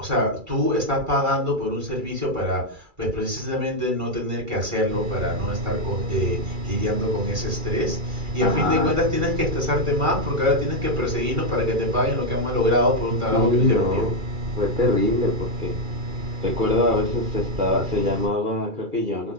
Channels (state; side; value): late; left; 2.3 ms